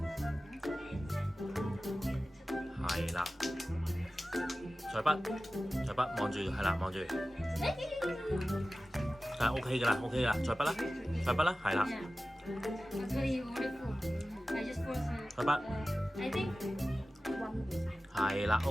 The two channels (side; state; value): both; normal; correlation 0.96